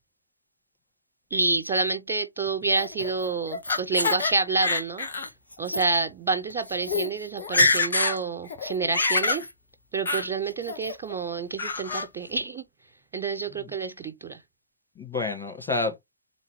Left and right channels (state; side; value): inverted; both; correlation -0.52